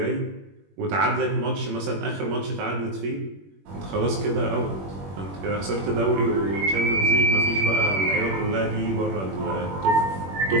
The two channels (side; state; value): left; late; 21 ms